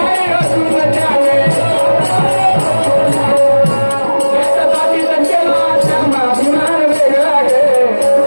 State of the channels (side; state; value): both; inverted; correlation -1.00